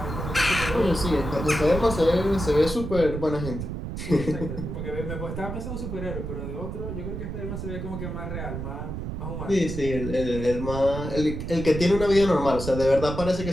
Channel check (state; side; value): noise; right; rumble, 6 dB below the sound